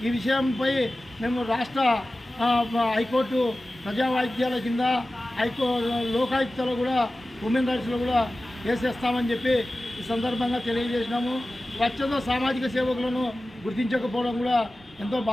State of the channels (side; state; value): both; normal; correlation 0.96